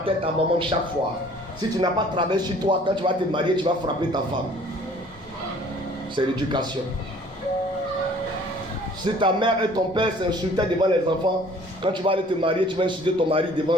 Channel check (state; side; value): normal; both; correlation 0.53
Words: ta maman chaque fois, si tu n'as pas travaillé sur toi, quand tu vas te marier, tu vas frapper ta femme. C'est l'éducation. Si ta mère et ton père s'insultaient devant les enfants, quand tu vas aller te marier, tu vas insulter ton mari devant